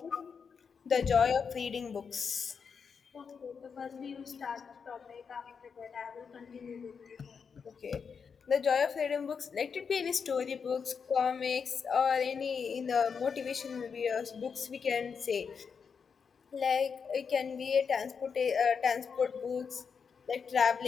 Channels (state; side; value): quieter; right; 6.1 dB